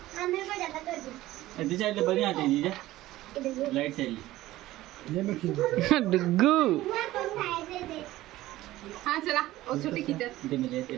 साइड ले बढ़िया आते जी लाइट साइड डुगू हाँ चला और छोटी की दे मिले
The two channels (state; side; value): quieter; left; 16.2 dB